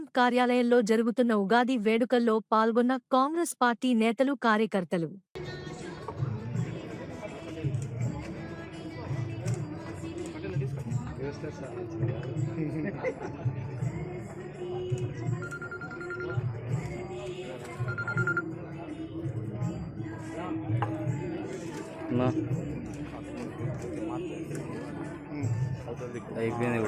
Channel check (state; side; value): identical; both; correlation 1.00